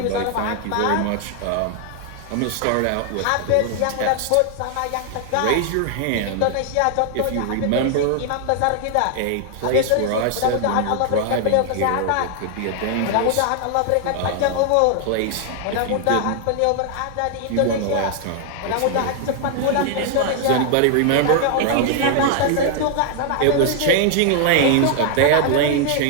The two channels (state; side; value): different; both; correlation 0.00